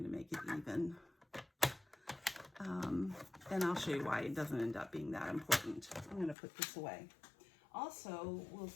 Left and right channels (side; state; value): right; drops out; at 6.4 s